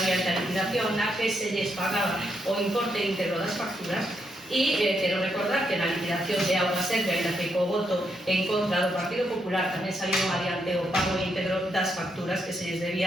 adiante a liquidación na que se lles pagaba o importe íntegro das facturas. E quero recordar que na liquidación de Auga Serve, ainda que co voto en contra do Partido Popular, tamén saliron adiante o pago íntegro das facturas que se lles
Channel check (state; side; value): normal; both; correlation 0.79